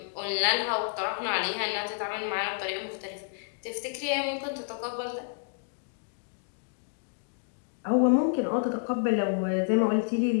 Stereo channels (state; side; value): silent; right; digital silence